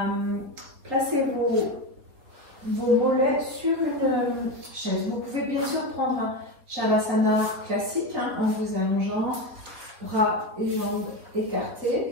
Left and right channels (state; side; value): late; left; 4.1 ms